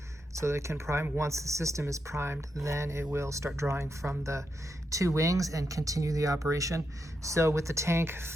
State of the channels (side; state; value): both; normal; correlation 0.84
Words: so that it can prime. Once the system is primed, then it will start drawing from the 2 wings and continue the operation. So with the tank